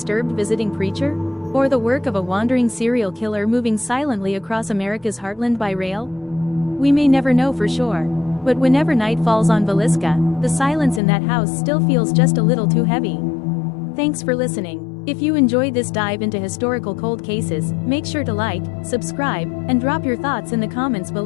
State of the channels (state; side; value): drops out; right; at 11.0 s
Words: visiting preacher? Or the work of a wandering serial killer moving silently across America's heartland by rail? We may never know for sure. But whenever night falls on Villisca, the silence in that house still feels just a little too heavy. Thanks for listening. If you enjoyed this dive into historical cold cases, make sure to like, subscribe, and drop your thoughts in the comments